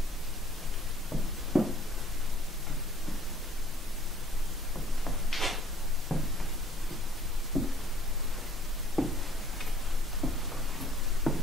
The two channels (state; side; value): normal; both; correlation 0.56